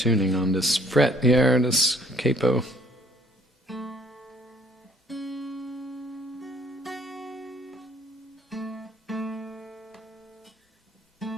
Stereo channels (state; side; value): normal; both; correlation 0.59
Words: on this fret here, this capo.